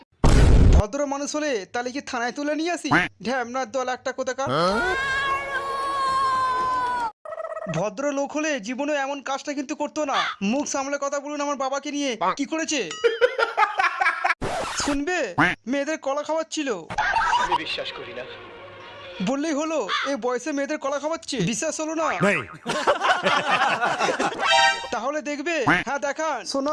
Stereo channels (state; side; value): identical; both; correlation 1.00